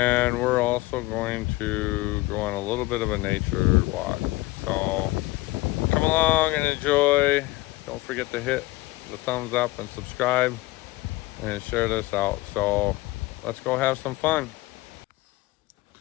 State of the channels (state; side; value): quieter; right; 19.7 dB